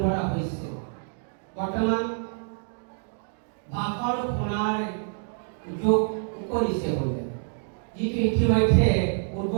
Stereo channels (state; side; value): silent; left; 60 dB below the other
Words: ধৰা হৈছে। বৰ্তমান ভাষণ শুনাৰ যোগ কৰিছে বোলে, যিটো ইতিমধ্যে